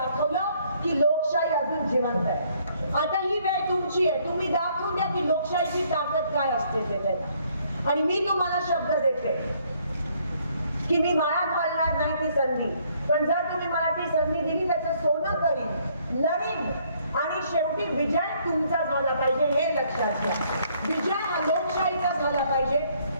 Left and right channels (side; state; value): both; inverted; correlation -0.66